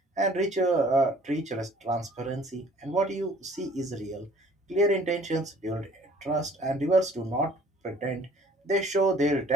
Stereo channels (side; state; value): both; normal; correlation 0.54